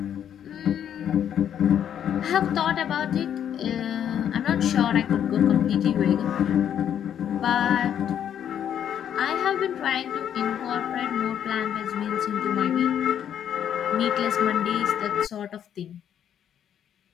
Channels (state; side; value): quieter; right; 9.5 dB